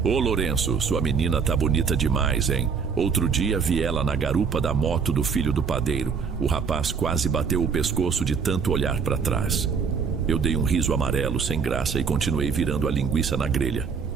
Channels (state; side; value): quieter; left; 5.9 dB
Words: Ô Lourenço, sua menina tá bonita demais, hein? Outro dia vi ela na garupa da moto do filho do padeiro. O rapaz quase bateu o pescoço de tanto olhar para trás. Eu dei um riso amarelo sem graça e continuei virando a linguiça na grelha.